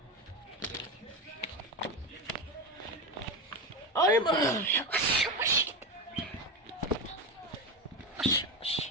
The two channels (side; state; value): both; normal; correlation 0.17